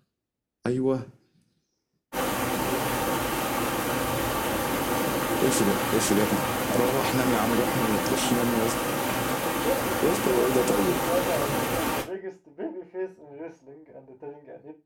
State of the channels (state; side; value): identical; both; correlation 1.00